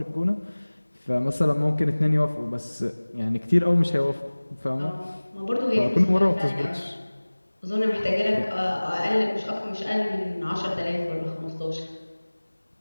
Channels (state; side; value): inverted; both; correlation -1.00